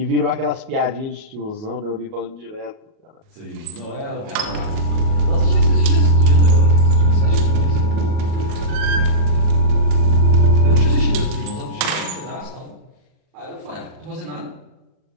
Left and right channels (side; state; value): left; late; 38 ms